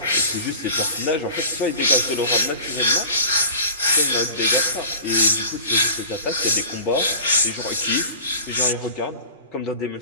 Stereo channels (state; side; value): inverted; both; correlation -0.39